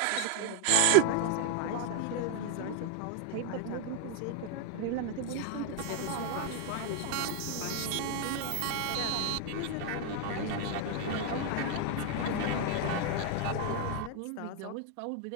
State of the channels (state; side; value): different; both; correlation 0.00